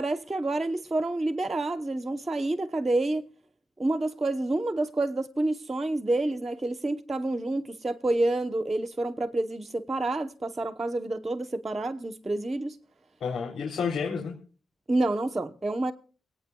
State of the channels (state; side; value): normal; both; correlation 0.92